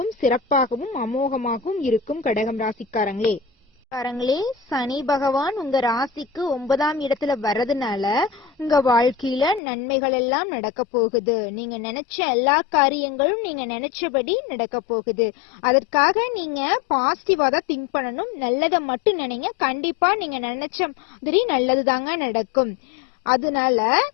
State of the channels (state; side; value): drops out; right; at 9.6 s